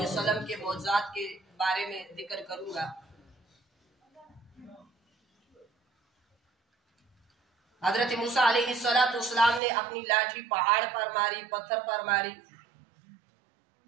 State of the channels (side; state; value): left; drops out; at 9.6 s